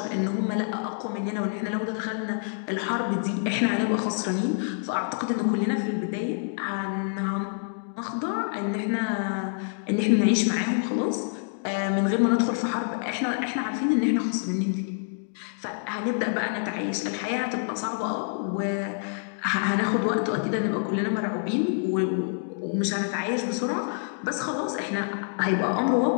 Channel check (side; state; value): right; silent; digital silence